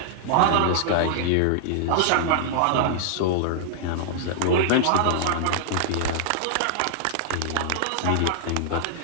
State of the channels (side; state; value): both; different; correlation -0.01